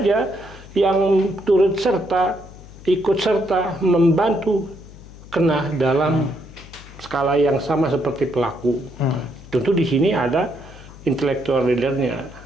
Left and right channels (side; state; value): left; noise; hum, 18 dB below the sound